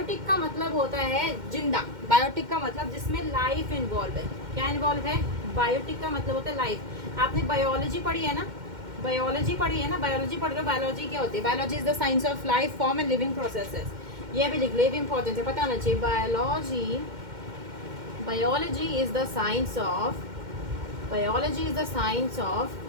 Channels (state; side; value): late; left; 2.1 ms